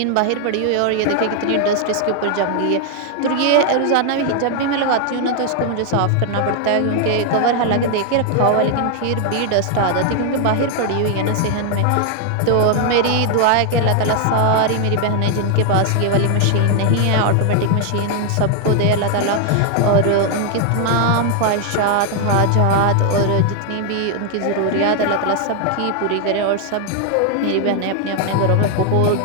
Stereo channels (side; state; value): both; different; correlation 0.00